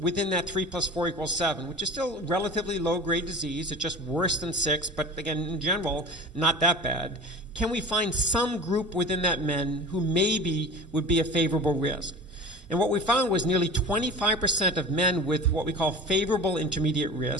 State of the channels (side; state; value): both; normal; correlation 0.34